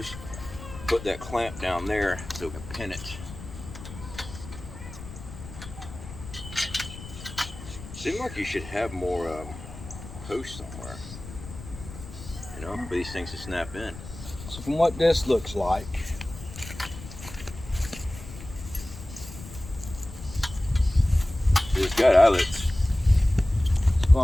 put that clamp down there so we can pin it. Seems like you should have more posts somewhere, you know, for these things to snap in. So from what this looks like, It's got eyelets. it's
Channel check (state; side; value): noise; left; rumble, 13 dB below the sound